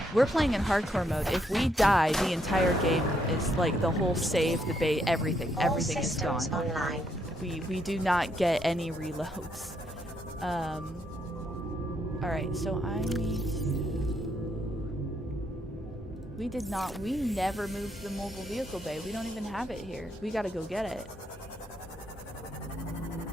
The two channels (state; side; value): normal; both; correlation 0.75